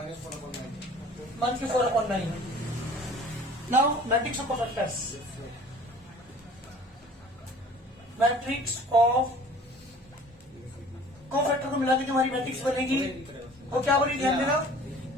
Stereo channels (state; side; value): normal; both; correlation 0.48